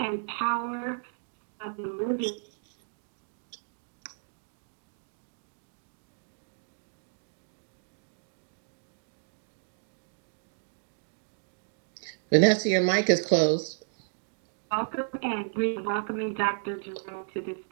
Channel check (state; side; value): silent; left; digital silence